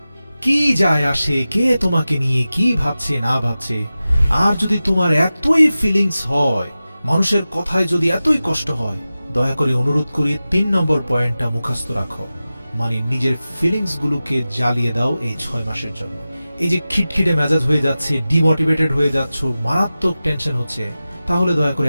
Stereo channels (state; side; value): inverted; both; correlation -0.95